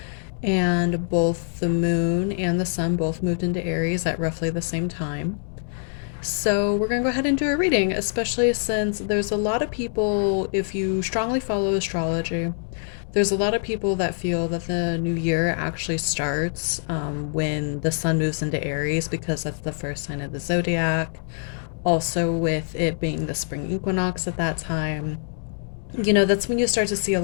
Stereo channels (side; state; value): right; silent; digital silence